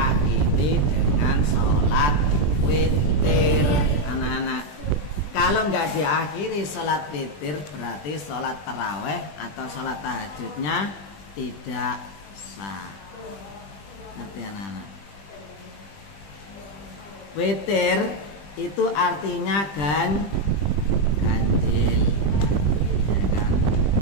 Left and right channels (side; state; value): right; late; 20 ms